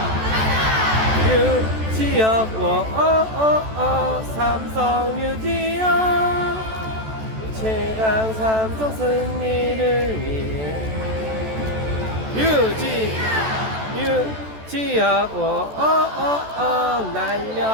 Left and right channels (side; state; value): left; late; 14 ms